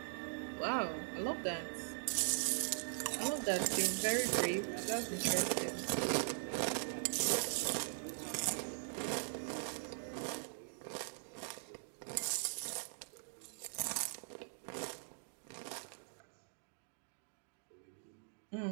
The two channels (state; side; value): silent; left; digital silence